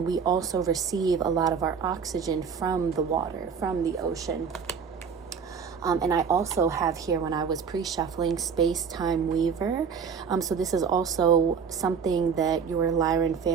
we also receive a lot of our oxygen from the water, from the ocean. And I also have here, when I was pre-shuffling, Space-Time Weaver. So this is also something that your Lyran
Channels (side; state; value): left; quieter; 6.4 dB